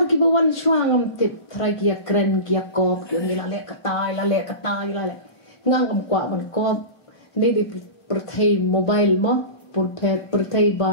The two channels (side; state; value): right; late; 1.5 ms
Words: ki bawan shuang tip try kia kren kia kop kia ni lale katai ngam kwa ban kop ni di perthai mobile mo perthai ba